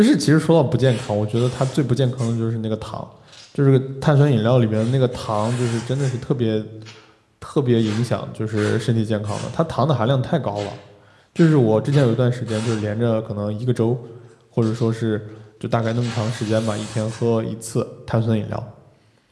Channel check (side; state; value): both; identical; correlation 1.00